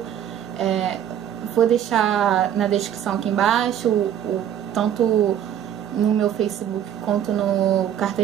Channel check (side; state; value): left; quieter; 10.1 dB